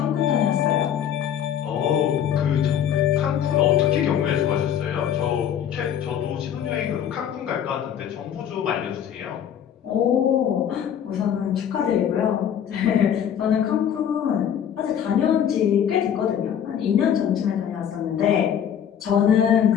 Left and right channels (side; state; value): right; quieter; 9.2 dB